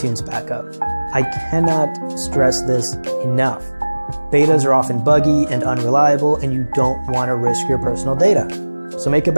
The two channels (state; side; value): inverted; both; correlation -1.00